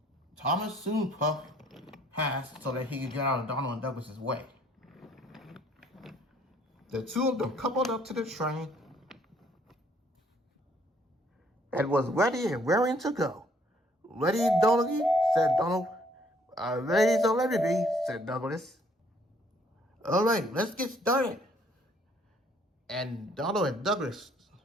Thomas soon puffed past so that he could get out of Donald and Douglas' way. The two of them coupled up to the train and was ready and raring to go. Ready, Donald? Said Donald. Ready so let me be, said Douglas. All right, let's get started. And Donald and Douglas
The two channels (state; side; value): normal; both; correlation 0.63